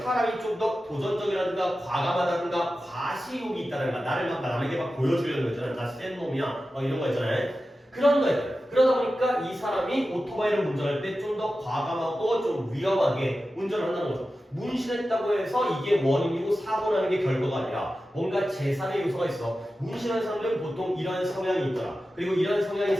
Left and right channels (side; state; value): both; normal; correlation 0.93